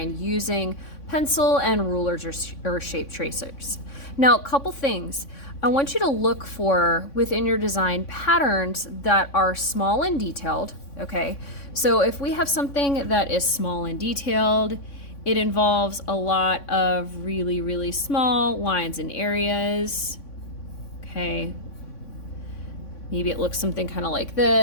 using pencil and rulers or shape tracers. Now, a couple things. I want you to look for within your design patterns that are small and detailed, okay? So if we have something that is small and detailed, it involves a lot of really, really small lines and areas, okay? Maybe it looks something kind of like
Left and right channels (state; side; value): late; right; 3.6 ms